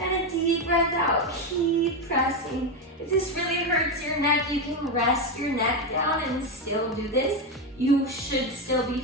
a deep breath out. Keep pressing. If this really hurts your neck, you can rest your neck down and still do this. You should still be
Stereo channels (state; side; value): normal; both; correlation 0.10